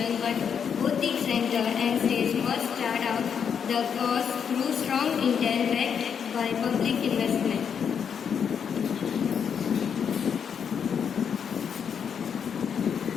but both the center and states must start out the course through strong intent backed by public investment.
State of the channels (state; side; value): quieter; right; 7.3 dB